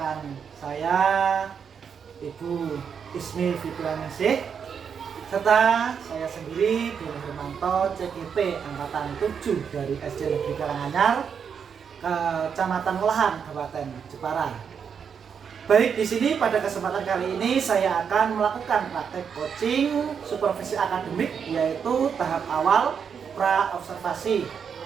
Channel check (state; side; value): quieter; left; 7.0 dB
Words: saya Ibu Ismi Fitrianingsih serta saya sendiri Doni Hermanto CGP Angkatan 7 dari SD Negeri Karanganyar Kecamatan Melahan Kabupaten Jepara. Baik, di sini pada kesempatan kali ini saya akan melakukan praktek coaching supervisi akademik yaitu tahap awal pra observasi